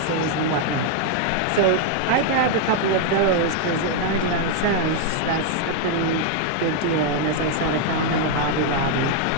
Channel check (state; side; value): different; both; correlation 0.00